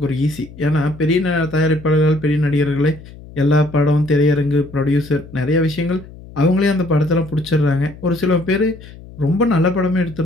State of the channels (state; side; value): noise; left; hum, 18 dB below the sound